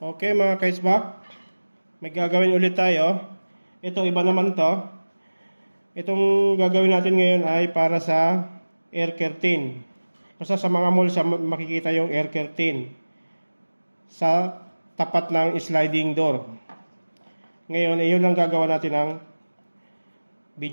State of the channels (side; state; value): both; inverted; correlation -1.00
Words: mga kaisbak. May gagawin ulit tayo. Ito iba naman to. Itong gagawin natin ngayon ay para sa air curtain. Basta sa mga mall makikita yung air curtain sa tapat ng sliding door. Ngayon, iyon ang gagawa natin ng